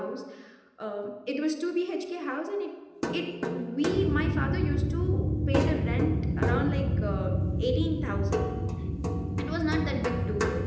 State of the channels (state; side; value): identical; both; correlation 1.00